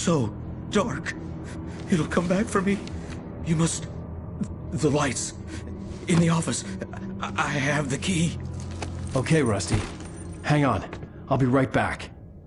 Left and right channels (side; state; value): both; identical; correlation 1.00